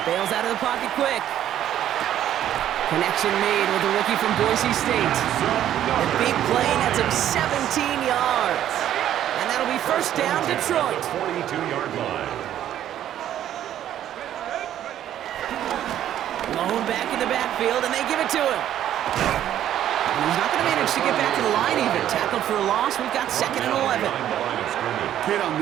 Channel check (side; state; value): left; quieter; 11.4 dB